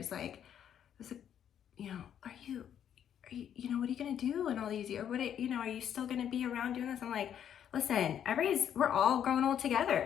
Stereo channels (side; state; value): right; quieter; 9.4 dB